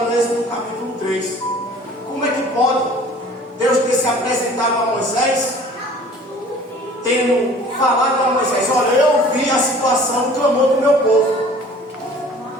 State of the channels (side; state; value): both; normal; correlation 0.49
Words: Êxodo capítulo 3. Como é que pode Deus ter se apresentado a Moisés, tendo falado a Moisés: olha, eu vi a situação, o clamor do meu povo,